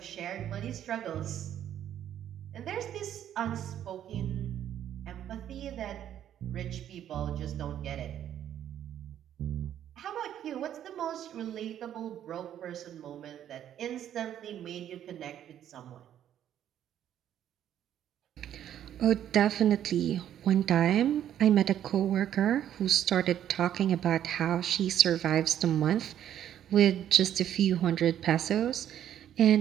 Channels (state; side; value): quieter; left; 10.6 dB